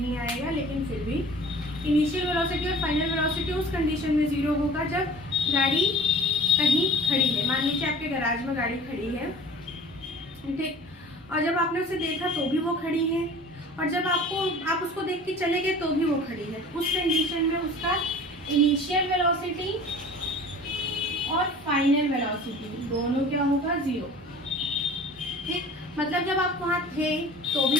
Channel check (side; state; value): both; normal; correlation 0.44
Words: आएगा, लेकिन फिर भी इनिशियल वेलोसिटी और फाइनल वेलोसिटी उस कंडीशन में 0 होगा जब गाड़ी कहीं खड़ी है। मान लीजिए आपके गैराज में गाड़ी खड़ी है, ठीक, और जब आपने उसे देखा तो भी वो खड़ी है, और जब आप उसको देख के चले गए तो भी वो खड़ी है। उस कंडीशन में उसका इनिशियल वेलोसिटी और फाइनल वेलोसिटी दोनों क्या होगा? 0। ठीक, मतलब जब आप वहाँ थे तो